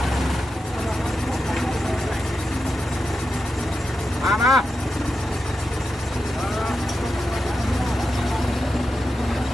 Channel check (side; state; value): both; normal; correlation 0.89